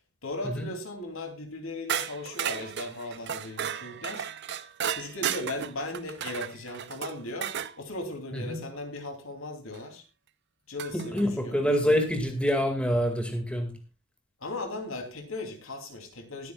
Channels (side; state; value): both; normal; correlation 0.47